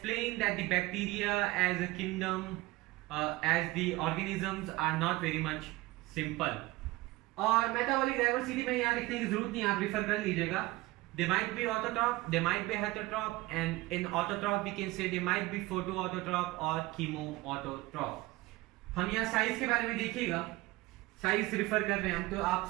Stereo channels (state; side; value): quieter; left; 20.0 dB